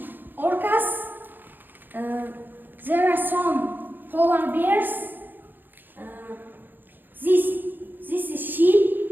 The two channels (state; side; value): late; left; 0.091 ms